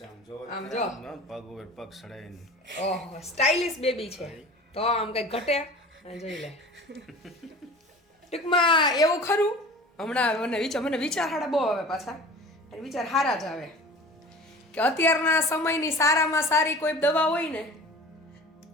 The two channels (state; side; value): normal; both; correlation 0.40